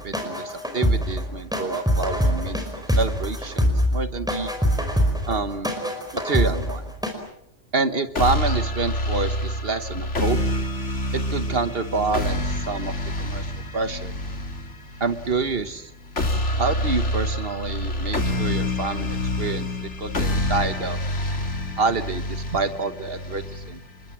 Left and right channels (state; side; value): normal; both; correlation 0.19